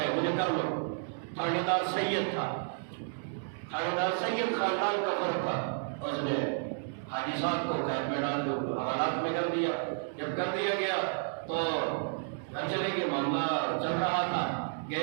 مجھے کر لو۔ تھانے دار سید تھا، تھانے دار سید خاندان کا فرق تھا، اس نے حاجی صاحب کو قید میں ڈال دو، حوالات میں کر دیا۔ جب کر دیا گیا تو گھر چلے گئے، معاملہ چل رہا تھا،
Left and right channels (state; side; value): silent; left; digital silence